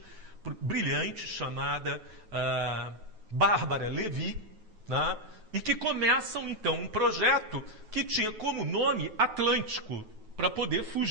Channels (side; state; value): left; late; 9.2 ms